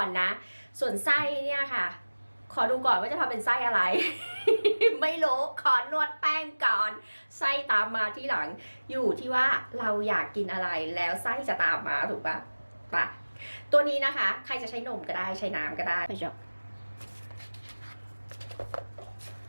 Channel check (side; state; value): both; inverted; correlation -1.00